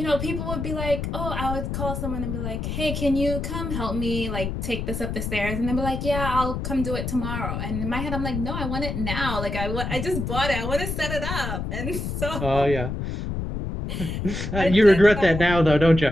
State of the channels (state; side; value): noise; left; rumble, 4 dB below the sound